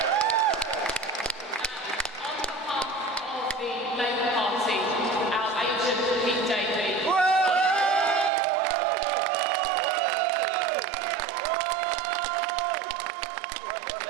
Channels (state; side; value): drops out; left; at 8.3 s